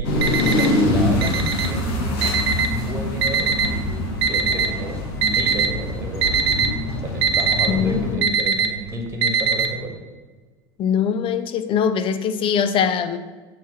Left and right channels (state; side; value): normal; both; correlation 0.20